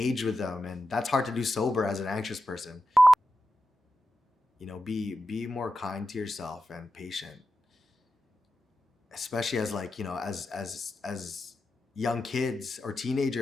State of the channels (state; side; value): normal; both; correlation 0.90